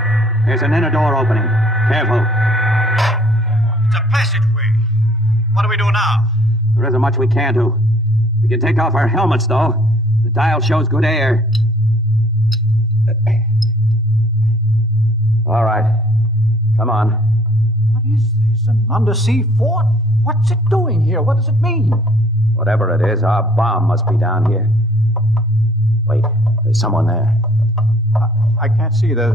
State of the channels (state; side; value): normal; both; correlation 0.58